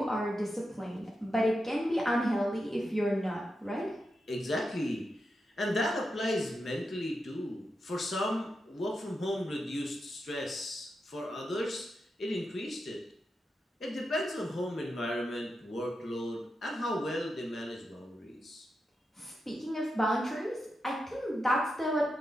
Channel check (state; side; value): normal; both; correlation 0.87